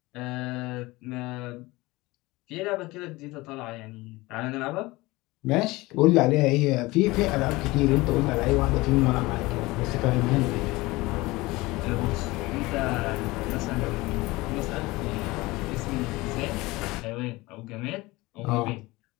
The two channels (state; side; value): quieter; right; 21.2 dB